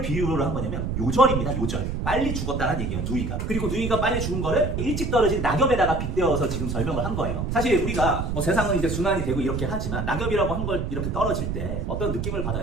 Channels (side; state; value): right; noise; rumble, 2 dB below the sound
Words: 비유로 한 거냐면 요절입니다. 요절. 빨리 죽었다는 얘기예요. 누이가. 그리고 누이가 빨리 죽은 거를 일찍 떨어진 낙엽에다가 빗대어서 지금 설명을 한 거예요. 사실 우리가 뭐 세상은 이제 순환이 되고 이렇게 하지만 낙엽이라고 한 걸 이렇게 떨어질 때 어떤 느낌을